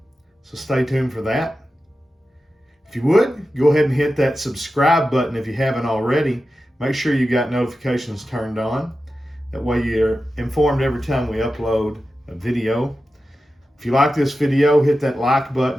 So stay tuned for that. If you would, go ahead and hit that subscribe button if you haven't already. Make sure you got notifications turned on. That way you're informed every time we upload a video. If you like this video, hit that like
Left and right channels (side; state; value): both; normal; correlation 0.92